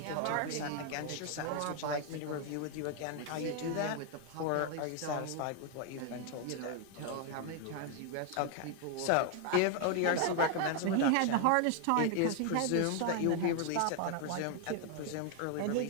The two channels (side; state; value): both; different; correlation 0.00